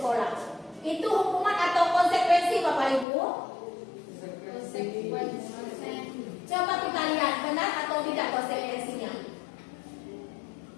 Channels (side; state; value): right; drops out; at 3.1 s